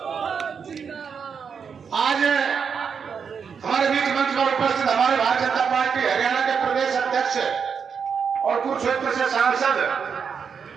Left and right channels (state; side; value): quieter; left; 6.4 dB